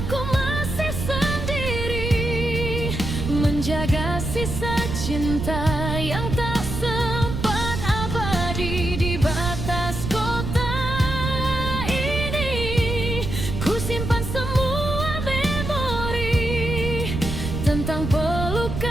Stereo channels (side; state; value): right; noise; rumble, 4 dB below the sound